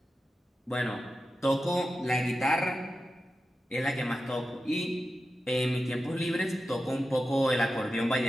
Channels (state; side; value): normal; both; correlation 0.91